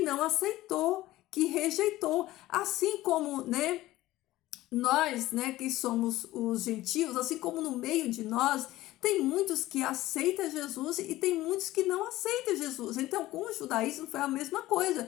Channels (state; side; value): quieter; right; 16.5 dB